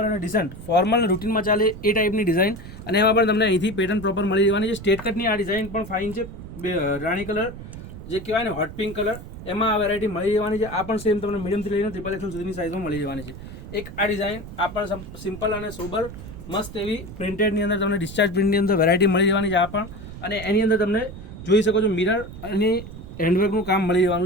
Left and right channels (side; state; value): right; noise; rumble, 12 dB below the sound